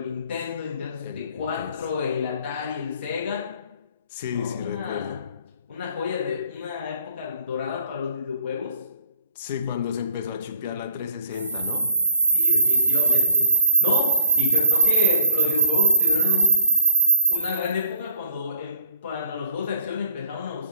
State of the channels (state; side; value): inverted; both; correlation -0.61